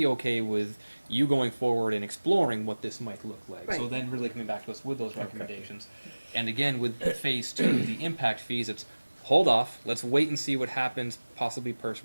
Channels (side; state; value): both; inverted; correlation -1.00